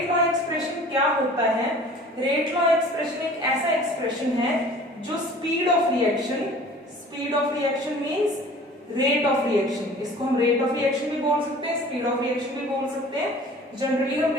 लॉ एक्सप्रेशन क्या होता है, रेट लॉ एक्सप्रेशन एक ऐसा एक्सप्रेशन है जो speed of reaction means rate of reaction, इसको हम रेट ऑफ रिएक्शन भी बोल सकते हैं, स्पीड ऑफ रिएक्शन भी बोल सकते हैं। जनरली हम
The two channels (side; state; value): both; normal; correlation 0.46